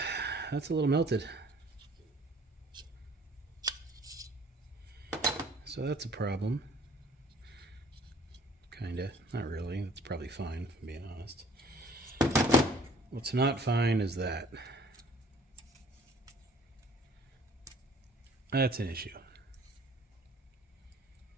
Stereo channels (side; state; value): both; normal; correlation 0.55